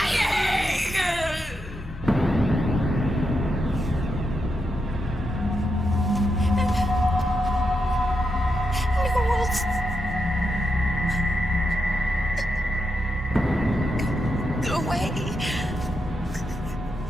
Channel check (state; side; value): normal; both; correlation 0.85